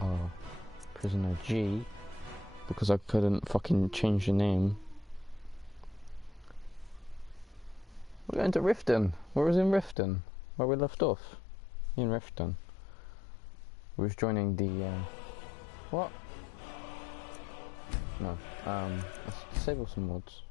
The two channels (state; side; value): drops out; right; at 10.0 s